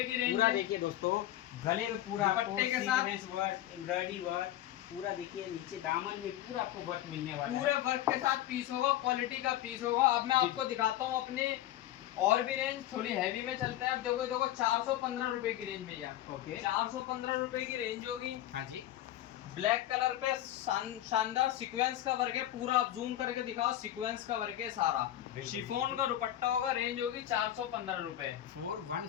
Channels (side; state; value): right; quieter; 13.2 dB